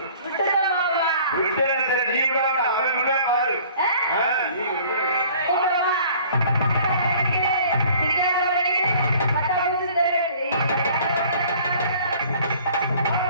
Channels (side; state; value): both; inverted; correlation -0.52